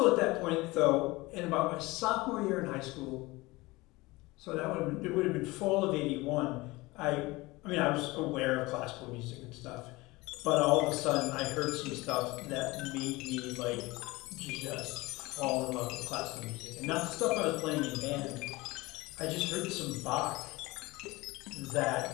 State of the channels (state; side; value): quieter; right; 21.7 dB